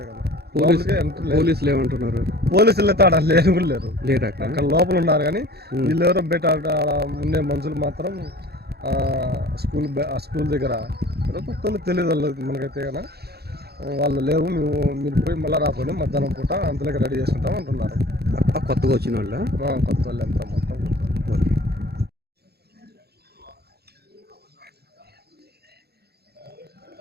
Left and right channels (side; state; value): left; late; 0.47 ms